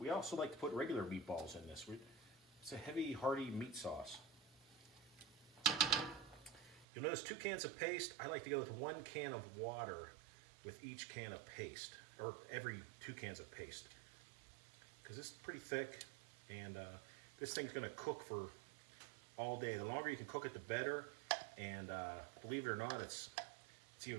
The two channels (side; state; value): left; drops out; at 6.9 s